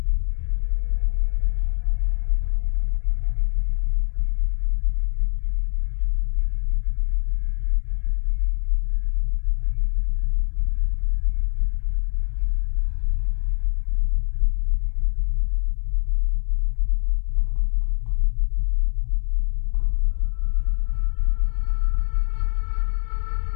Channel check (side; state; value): right; silent; 63 dB below the other